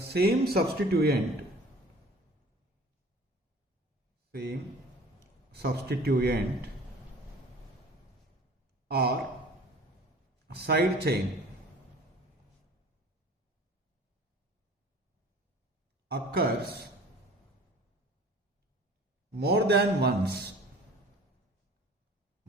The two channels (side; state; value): both; normal; correlation 0.46